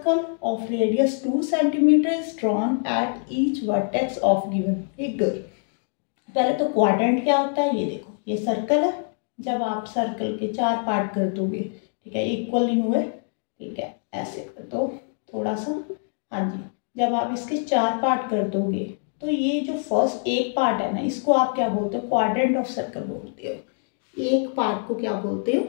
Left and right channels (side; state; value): right; silent; 56 dB below the other